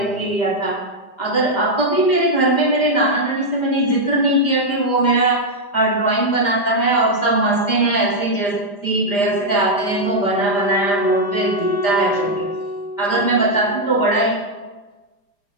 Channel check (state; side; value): late; right; 5.0 ms